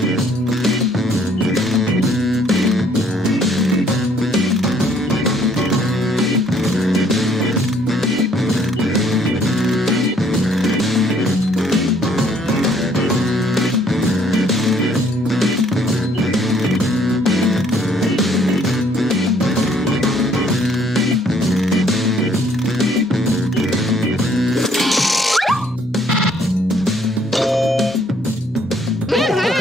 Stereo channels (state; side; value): normal; both; correlation 0.63